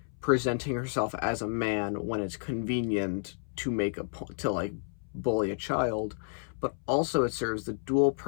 presenting herself as a man when it's convenient to to like bully a child. But also it serves the dual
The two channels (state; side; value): silent; right; 57 dB below the other